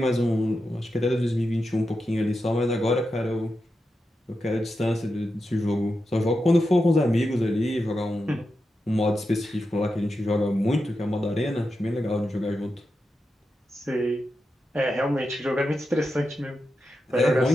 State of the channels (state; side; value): normal; both; correlation 0.89